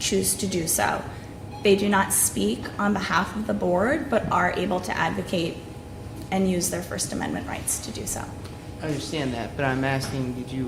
to do so. They do not speak on behalf of the board, but are able to advocate and use their First Amendment rights to do so. I understand that, but I'm asking, did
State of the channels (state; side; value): identical; both; correlation 1.00